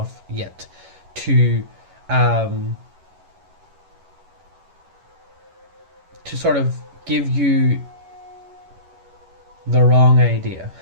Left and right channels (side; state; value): left; late; 11 ms